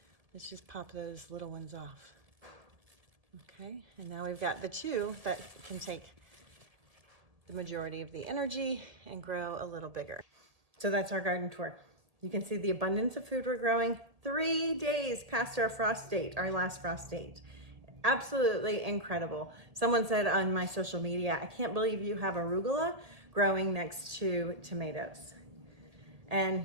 Let's just pop those little ones off. Okay, and now we've got the 2 that can take the majority of the energy and grow a little bigger. So that's our garden tour. You can see the abundance of food we're growing 3 days past our frost date, our last frost date. Absolutely incredible. Someone said on my social media, I can't believe you have arugula growing next to tomatoes.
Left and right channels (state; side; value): late; left; 1.8 ms